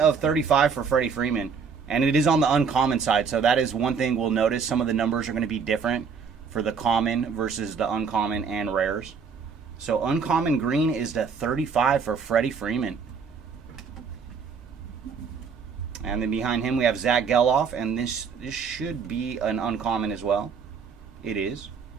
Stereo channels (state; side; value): quieter; left; 5.8 dB